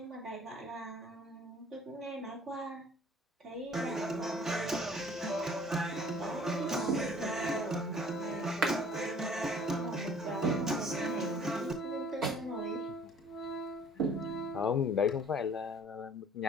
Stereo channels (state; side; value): normal; both; correlation 0.53